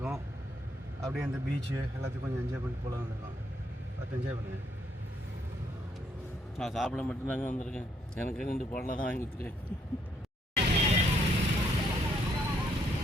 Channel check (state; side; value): normal; both; correlation 0.72